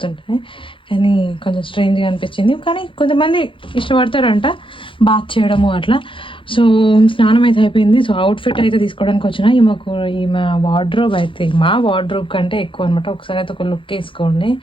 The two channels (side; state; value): right; late; 0.25 ms